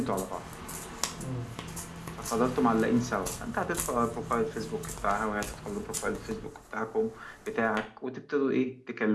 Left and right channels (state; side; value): identical; both; correlation 1.00